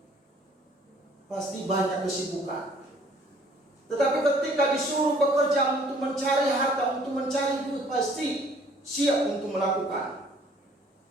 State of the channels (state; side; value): normal; both; correlation 0.57